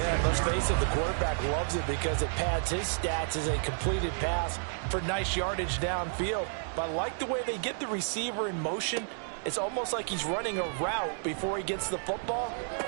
let's face it, the quarterback loves it because it pads his stats as a completed pass for nice yardage downfield. But I like the way they get the receiver in motion. It's almost like he's running a route before he gets the football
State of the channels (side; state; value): left; silent; digital silence